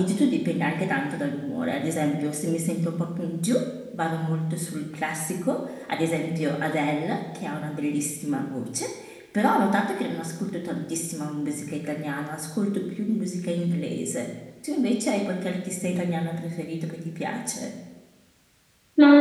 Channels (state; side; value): identical; both; correlation 1.00